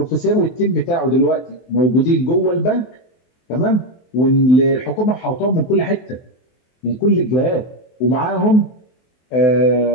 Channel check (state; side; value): late; right; 24 ms